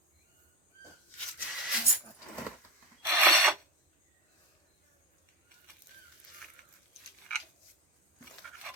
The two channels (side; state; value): both; normal; correlation 0.19